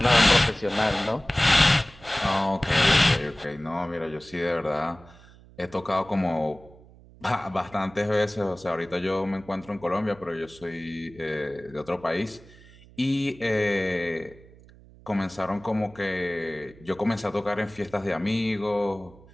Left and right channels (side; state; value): right; noise; hum, 23 dB below the sound